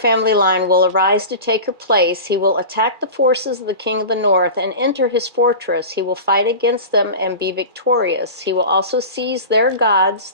line will arise to take her place. He will attack the forces of the king of the north and enter his fortress. He will fight against them and be victorious. He will also seize their gods,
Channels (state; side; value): late; left; 2.4 ms